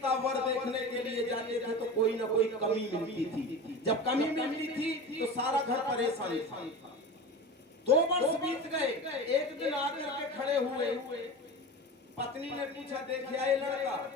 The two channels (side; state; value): both; normal; correlation 0.30